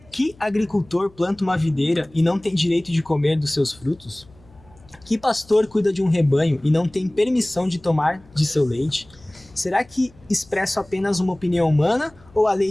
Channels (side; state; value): left; noise; hum, 27 dB below the sound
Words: Que agricultor planta uma videira e não tem direito de comer dos seus frutos? Que pastor cuida de um rebanho e não tem permissão de tomar de seu leite? Será que expresso apenas uma opinião humana ou a